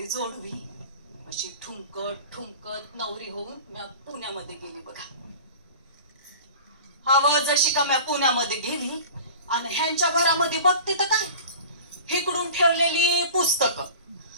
जोडवी, अशी ठुमकत ठुमकत नवरी होऊन मी पुण्यामध्ये गेली बघा. जशी का मी पुण्यामध्ये गेली आणि ह्यांच्या घरामध्ये बघते तर काय, इकडून ठेवलेली पुस्तकं,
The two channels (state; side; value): inverted; both; correlation -0.38